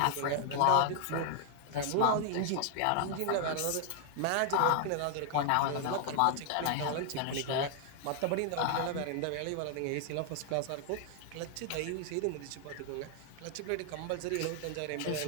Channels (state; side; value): different; both; correlation 0.00